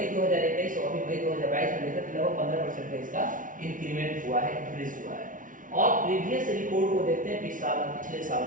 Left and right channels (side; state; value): left; late; 0.38 ms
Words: 2021 और अभी मई 2022 में देखा तो लगभग 15% का इसका इंक्रीमेंट हुआ है, इंक्रीज हुआ है। और प्रीवियस रिपोर्ट को देखते हैं पिछले साल